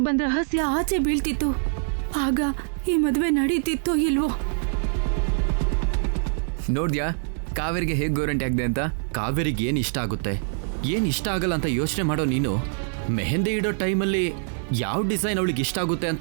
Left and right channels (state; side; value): silent; left; digital silence